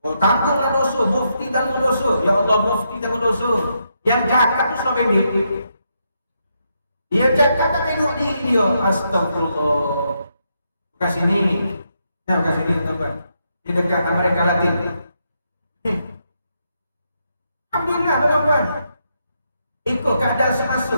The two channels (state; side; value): inverted; both; correlation -0.80